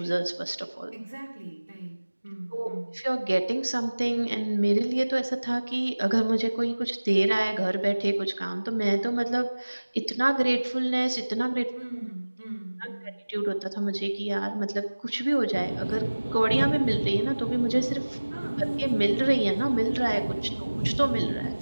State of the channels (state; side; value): inverted; both; correlation -1.00